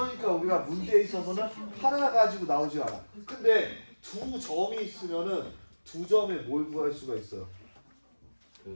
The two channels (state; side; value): inverted; both; correlation -1.00